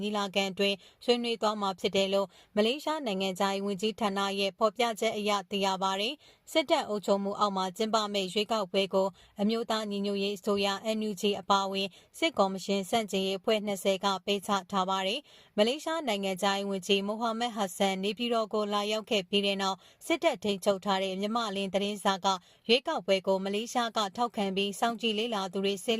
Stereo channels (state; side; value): identical; both; correlation 1.00